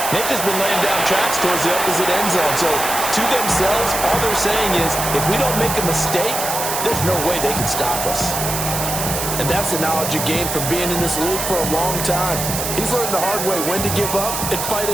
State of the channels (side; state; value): right; noise; hiss, 3 dB below the sound